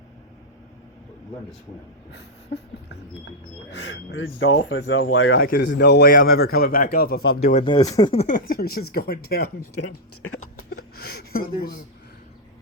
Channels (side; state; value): both; normal; correlation -0.05